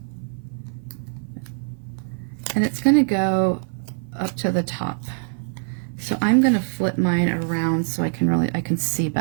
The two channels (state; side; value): silent; left; 55 dB below the other